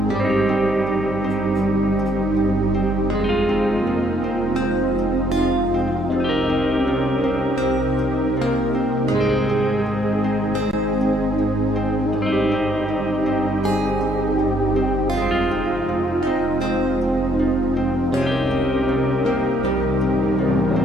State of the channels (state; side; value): normal; both; correlation 0.69